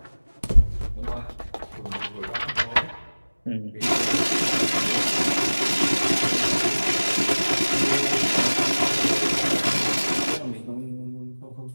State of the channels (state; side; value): inverted; both; correlation -1.00